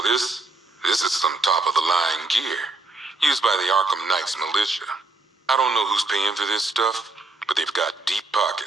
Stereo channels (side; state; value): left; quieter; 3.1 dB